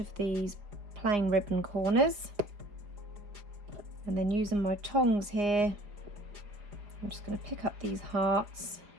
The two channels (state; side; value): late; left; 4.9 ms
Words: of these plain ribbon corners, and then using my tongs here I'm just going to pick up these hearts